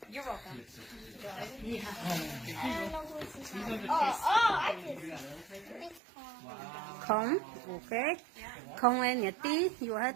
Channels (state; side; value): drops out; left; at 6.0 s